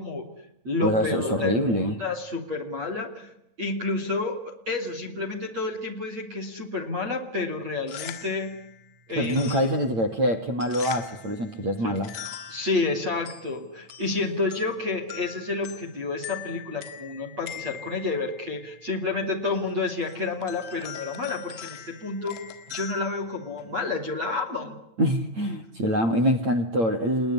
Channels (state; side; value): late; left; 9.0 ms